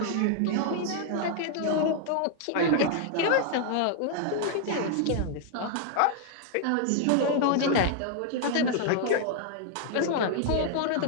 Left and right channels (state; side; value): different; both; correlation 0.00